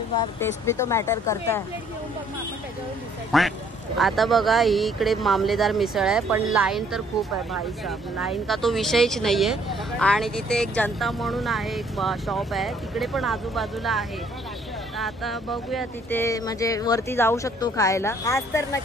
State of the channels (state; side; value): normal; both; correlation 0.63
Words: टेस्ट भी तो मॅटर करता है. आता बघा, ही इकडे मामलेदार मिसळ आहे, पण लाईन तर खूप आहे भाई साहब. लाईन का तो विषयच नाहीये. आणि तिथे एक जनता म्हणून आहे, एक शॉप आहे, तिकडे पण आजूबाजूला आहे. आता बघूया तिथे, म्हणजे वरती जाऊ शकतो खायला. आज तर